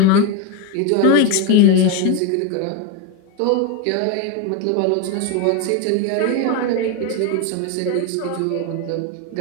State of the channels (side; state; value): both; different; correlation 0.02